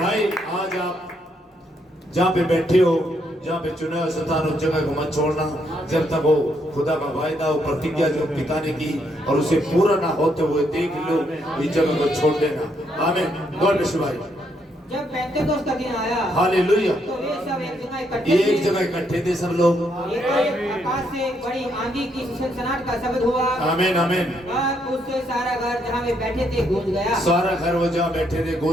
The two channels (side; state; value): both; normal; correlation 0.75